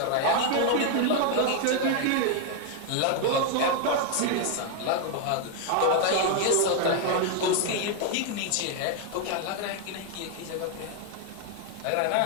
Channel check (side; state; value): both; different; correlation 0.00